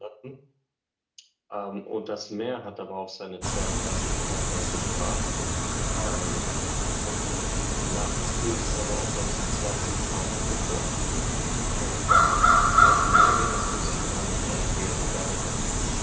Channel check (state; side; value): identical; both; correlation 1.00